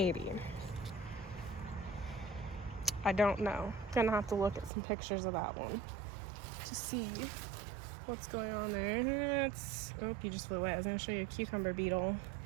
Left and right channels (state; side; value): drops out; left; at 4.7 s